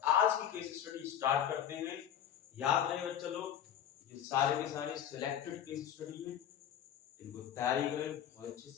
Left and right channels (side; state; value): right; quieter; 9.8 dB